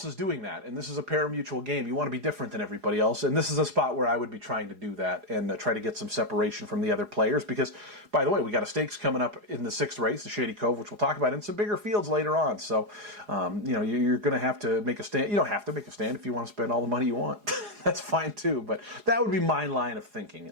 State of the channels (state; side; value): late; left; 4.8 ms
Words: is doing that, and this is a pari-mutuel game. You want to be different than everybody else, and this is a spot where I would be trying to do that and try to get some separation from the other players because, by the way, we got a stakes coming up in the 6th race, the Shady Cove, which we'll talk about, in some bigger fields later on. So, you're going to have to make a stand. You don't have to make a stand if you want to spend all the money you want. That's fine, too, but that would be my line of thinking,